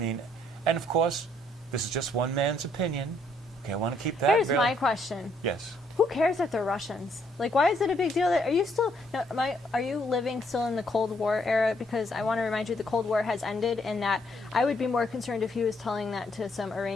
of course, this is just one man's opinion. Okay, I want to keep that. Here's my question. Yes. Who cares that they're Russians? Like, why is it a big deal? Are you still? No, are you living still in the Cold War era? Because I want to remind you, the Cold War has ended, and that I would be more concerned if he was telling that to some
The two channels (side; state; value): both; normal; correlation 0.70